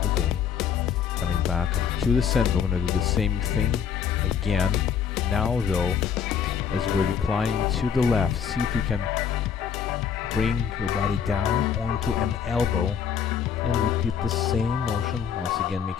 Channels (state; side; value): quieter; right; 7.5 dB